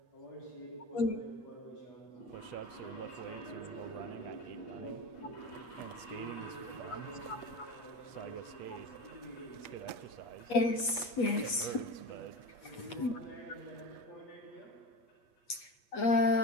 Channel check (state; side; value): late; right; 8.3 ms